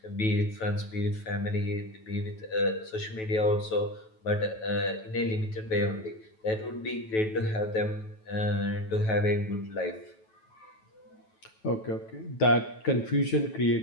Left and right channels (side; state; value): right; late; 9.2 ms